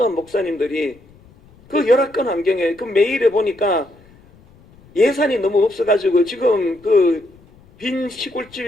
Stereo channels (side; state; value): left; noise; rumble, 27 dB below the sound